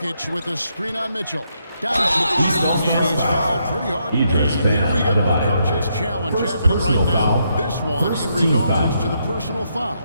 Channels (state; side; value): inverted; both; correlation -0.78